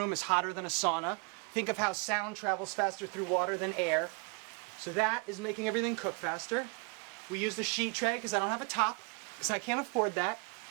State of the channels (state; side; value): quieter; left; 33.3 dB